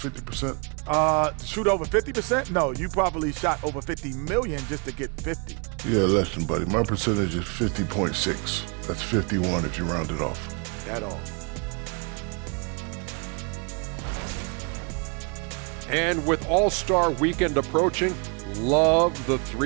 To shoot over 50%? No, you probably shot over 50 million just to get 50. Yeah, less than, buddy. My percentage is 50.6. That's 51 if you round it off. At all. And with All-Star Weekend approaching, love the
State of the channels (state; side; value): quieter; left; 35.0 dB